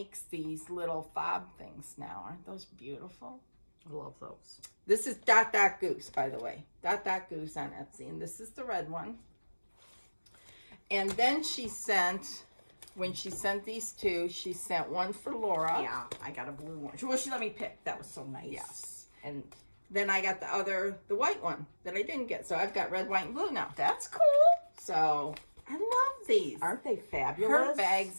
these little fob things now. Aren't those beautiful? I love those. This is Dot Dot Goose, by the way. Dot Dot Goose on Etsy. And this is the red one. And then she sent, when she sent these two, she sent one for Laura. Yeah, I got a blue one. Well, she let me pick. That was so nice. Yes. And then I got the white one that I didn't get. So I've got red, white, and blue now. That's cool. So I love these. Aren't they fabulous? Her bags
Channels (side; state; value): both; inverted; correlation -1.00